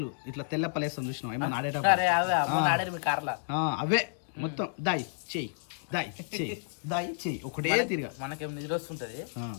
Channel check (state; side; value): silent; right; digital silence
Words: ఇట్లా తెల్లప్పలేస్తాం చూసినాం ఏమన్నా ఆడేటప్పుడు, అవే మొత్తం దాయి చెయ్యి దాయి చెయ్యి దాయి చెయ్యి ఒకటే తిరిగా. మనకేం నిద్ర వస్తుంటది,